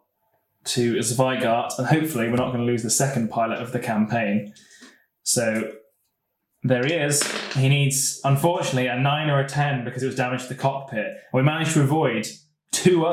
to Zweigart, and hopefully we're not going to lose the second pilot of the campaign. So there he is. He needs, unfortunately, a 9 or a 10 because it was damaged to the cockpit. We managed to avoid 2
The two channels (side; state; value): both; identical; correlation 1.00